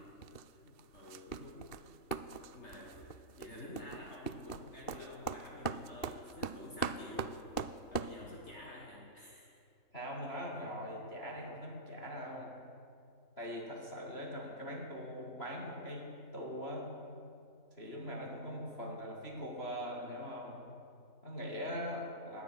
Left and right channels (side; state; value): right; late; 2.8 ms